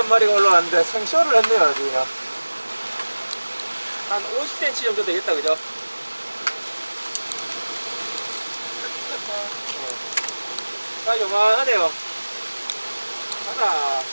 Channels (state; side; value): inverted; both; correlation -1.00